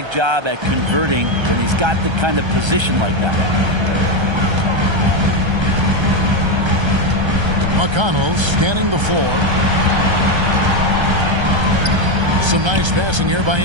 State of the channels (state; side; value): late; left; 1.3 ms